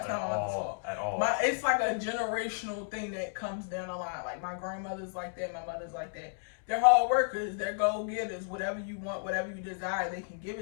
not my mother's fault at all. It's like a generational thing that comes down the line. Like my grandmother's like that. My mother's like that. They're hard workers. They're go getters. Whatever you want, whatever you desire, they can give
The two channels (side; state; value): right; silent; digital silence